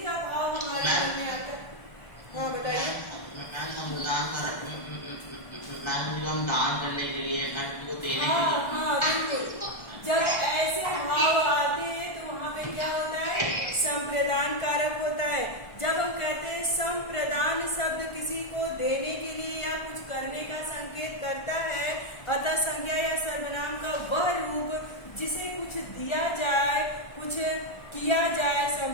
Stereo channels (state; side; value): late; right; 1.3 ms